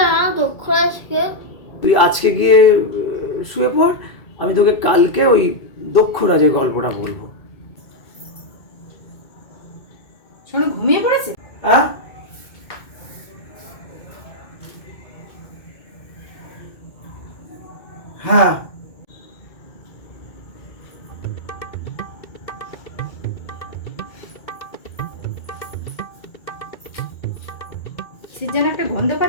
না দক্ষরাজকে। তুই আজকে গিয়ে শুয়ে পড়, আমি তোকে কালকে ওই দক্ষরাজের গল্পটা বলবো। সোনু ঘুমিয়ে পড়েছে? হ্যাঁ, হ্যাঁ। কিসের যেন একটা গন্ধ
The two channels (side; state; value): right; late; 2.3 ms